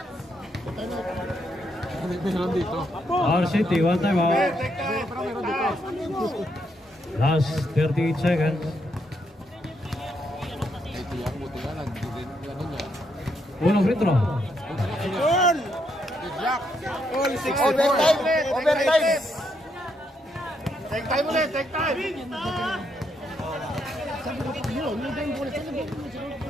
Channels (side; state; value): both; normal; correlation 0.77